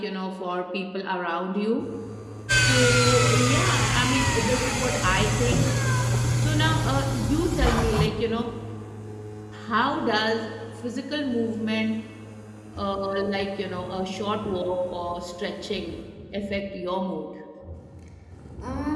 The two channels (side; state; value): both; identical; correlation 1.00